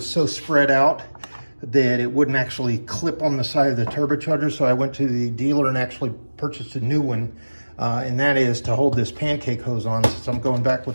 so spread out that it wouldn't actually clip on the side of the turbocharger. So I went to the dealer and actually purchased a new one. And that is to hold this pancake hose on, since I'm going back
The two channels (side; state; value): both; inverted; correlation -1.00